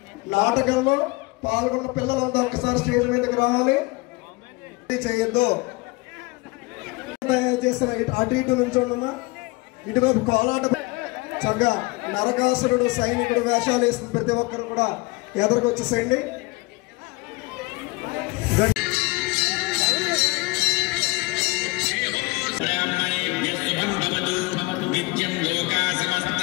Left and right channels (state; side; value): quieter; right; 24.4 dB